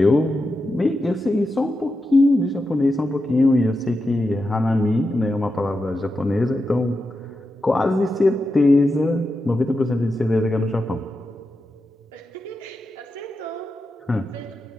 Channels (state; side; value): normal; both; correlation 0.89